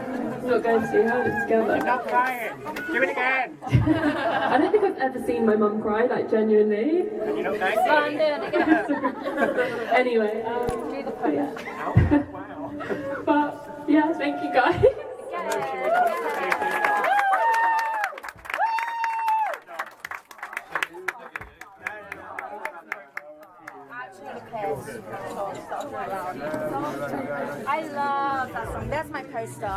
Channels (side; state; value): both; identical; correlation 1.00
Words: not going to. Held it together. Not crying. Do it again. I don't think I've ever seen my mum cry, like genuinely. You know, thank So I'm doing it again. Anyway, Do the pose. yeah. Wow. But yeah, thank you guys. I love that song. There's my poster.